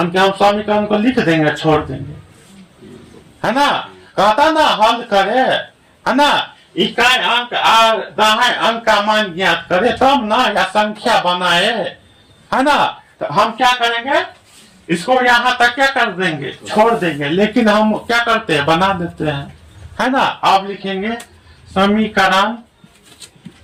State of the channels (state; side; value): identical; both; correlation 1.00